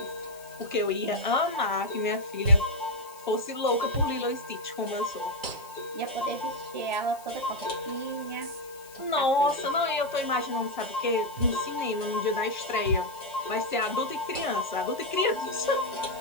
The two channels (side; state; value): left; noise; hiss, 21 dB below the sound